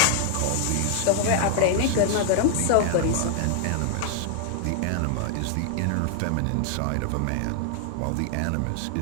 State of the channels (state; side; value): different; both; correlation 0.00